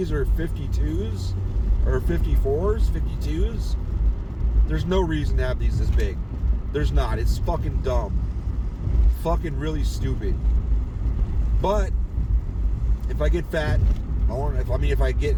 are 52s or 54s, 52s. There's no reason to have these this big. There's not. It's fucking dumb. Fucking really stupid. But if I get fat,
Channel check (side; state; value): both; identical; correlation 1.00